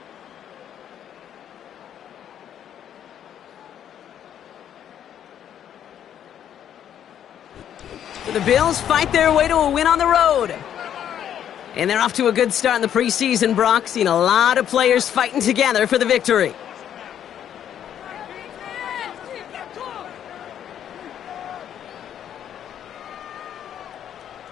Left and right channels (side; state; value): right; quieter; 9.9 dB